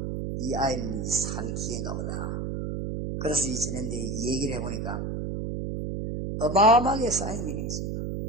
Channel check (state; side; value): noise; right; hum, 3 dB below the sound